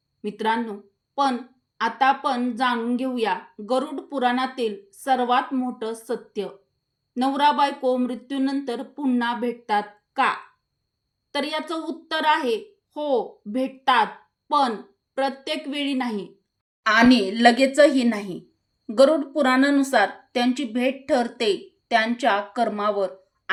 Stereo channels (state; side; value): identical; both; correlation 1.00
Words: मित्रांनो, पण आता आपण जाणून घेऊया गरुड पुराणातील सर्वात मोठं सत्य. नवरा बायको मृत्यूनंतर पुन्हा भेटतात का? तर याचं उत्तर आहे हो, भेटतात, पण प्रत्येक वेळी नाही आणि लगेचही नाही. गरुड पुराणानुसार त्यांची भेट ठरते त्यांच्या कर्मावर